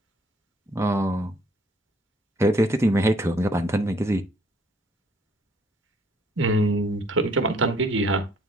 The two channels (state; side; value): normal; both; correlation 0.62